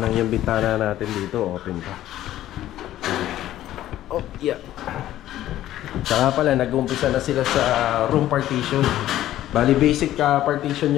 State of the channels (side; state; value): right; quieter; 13.4 dB